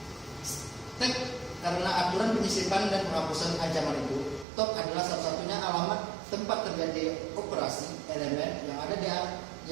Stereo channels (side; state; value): left; drops out; at 4.5 s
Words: Stack karena aturan penyisipan dan penghapusan ancaman itu, top adalah satu-satunya alamat tempat terjadi operasi elemen